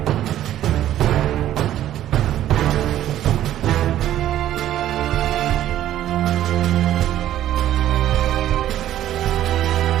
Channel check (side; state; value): left; quieter; 12.4 dB